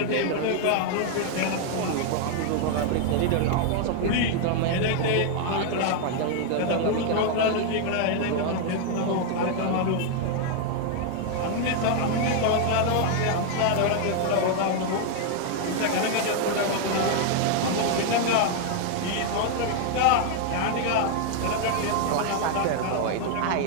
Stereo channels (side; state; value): both; different; correlation 0.00